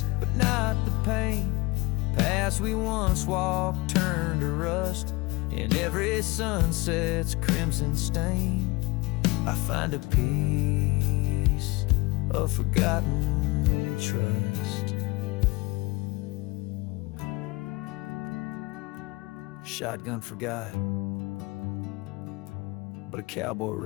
but not the pain. Paths we once walked turn to rust, in every sunset's crimson stain. I find a piece of forgotten trust. Shotgun forgot, but a cowboy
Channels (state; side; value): quieter; right; 23.9 dB